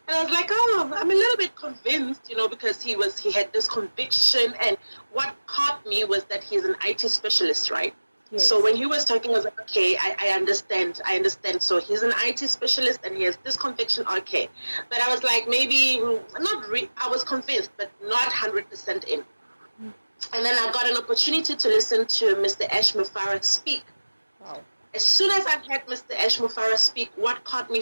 And I was like, oh, I'm a little bit convinced, you know, because he had this conviction. And what caught me was that he's an IT specialist, right? Yes. So when he was talking, I was like, okay, I understand. So he's an IT specialist and he has this conviction, okay. But I was like, maybe, I was convinced, but not 100% in. And then I got an opportunity to listen to Mr. Ash Mufareh speak. Wow. As soon as I heard Mr. Ash Mufareh speak, what caught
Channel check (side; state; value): both; inverted; correlation -1.00